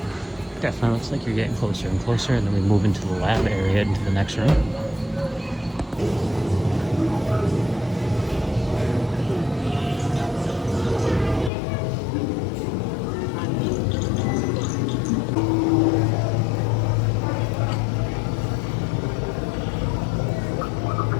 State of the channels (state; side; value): drops out; right; at 11.5 s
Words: Definitely looks like you're getting closer and closer, and then we move into the lab area, into the next room.